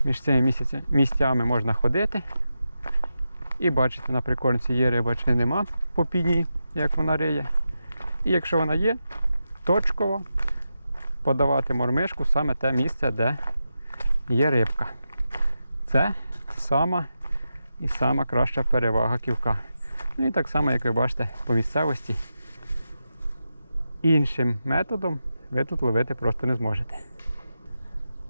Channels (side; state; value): both; inverted; correlation -0.89